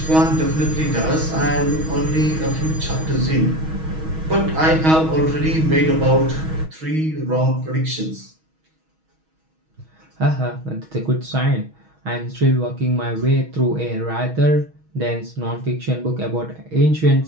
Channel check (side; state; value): left; late; 6.3 ms